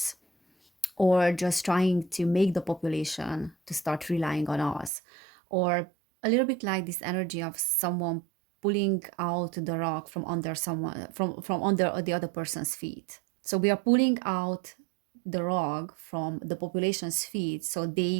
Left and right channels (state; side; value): drops out; left; at 4.9 s